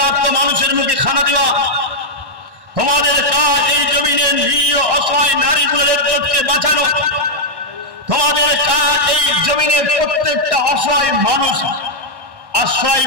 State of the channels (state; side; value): late; left; 1.1 ms